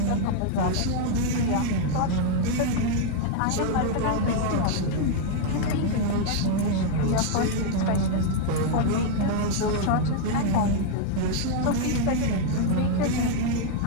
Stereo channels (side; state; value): both; different; correlation 0.00